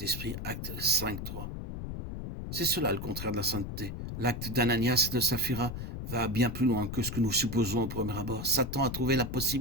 Acte 5.3. C'est cela le contraire de la sainteté. L'acte d'Ananias et de Saphira va bien plus loin que ce que nous supposons au premier abord. Satan a trouvé la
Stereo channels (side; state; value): left; noise; rumble, 6 dB below the sound